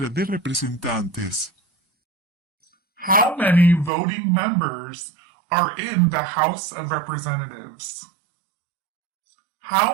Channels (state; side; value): drops out; left; at 3.9 s